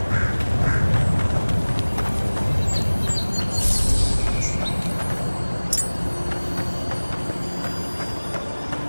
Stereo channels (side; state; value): both; inverted; correlation -1.00